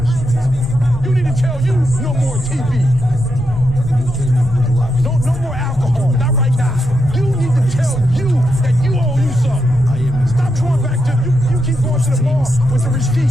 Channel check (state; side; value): normal; both; correlation 0.83